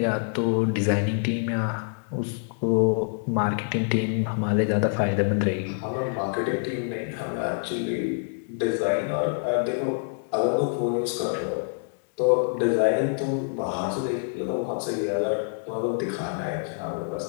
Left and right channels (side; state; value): right; silent; digital silence